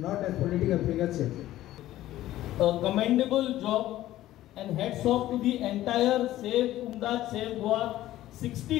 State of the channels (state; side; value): quieter; right; 14.5 dB